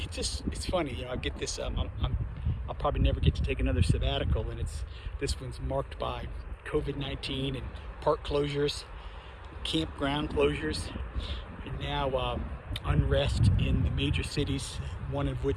funny, I get this. I'll probably never get to take another sabbatical, and this one's marked by COVID-19 and park closures, campground closures, and now unrest in the major cities, one of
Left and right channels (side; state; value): both; identical; correlation 1.00